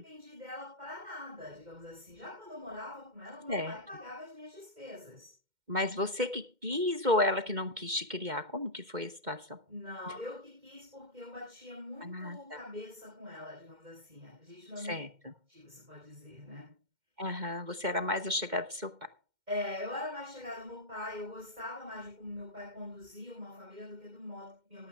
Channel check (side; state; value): left; late; 2.1 ms